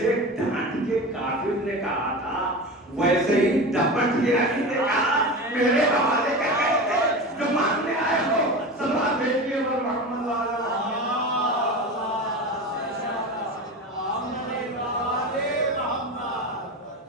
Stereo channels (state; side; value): normal; both; correlation 0.28